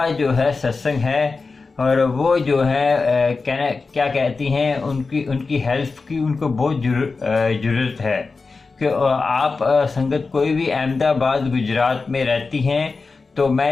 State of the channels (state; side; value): quieter; right; 4.2 dB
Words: जो है सत्संग है और वो जो है कहना क्या कहती हैं, उनकी उनकी हेल्प की उनको बहुत ज़रूरत है कि आप संगत कोई भी अहमदाबाद गुजरात में रहती हैं तो